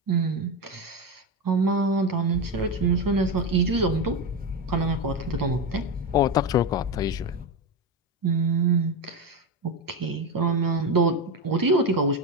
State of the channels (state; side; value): normal; both; correlation 0.14